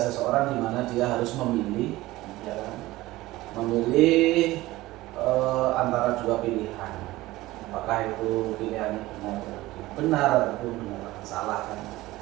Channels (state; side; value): quieter; left; 18.1 dB